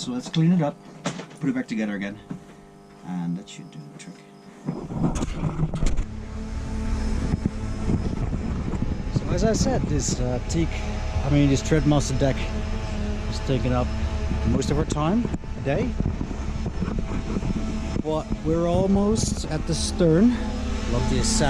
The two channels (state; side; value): identical; both; correlation 1.00